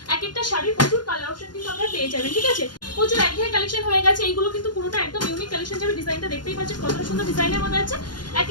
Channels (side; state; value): right; late; 0.71 ms